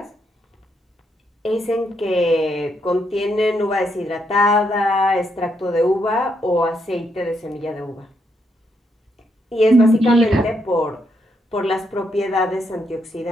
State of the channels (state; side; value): normal; both; correlation 0.77